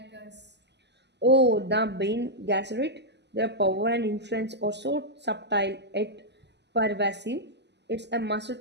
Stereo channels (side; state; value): left; late; 0.50 ms